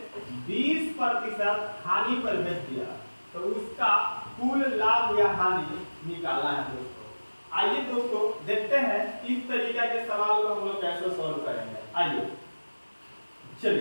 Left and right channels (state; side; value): inverted; both; correlation -1.00